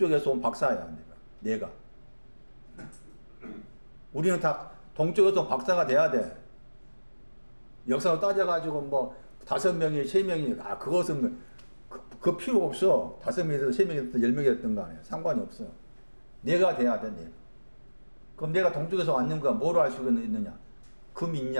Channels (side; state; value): both; inverted; correlation -1.00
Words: 온 박사야. 내가. 우리는 다 동쪽에서 온 박사가 돼야 돼. 역사로 따져가지고 뭐 5명이 3명이 그것은 그 필요 없어. 5명이 됐든 3명이 됐든 10명이 됐든 간에 상관이 없어. 내가 돼야 돼. 내가. 그럼 내가 동쪽에서 왔는가? 뭐로 알 수가 있느냐? 금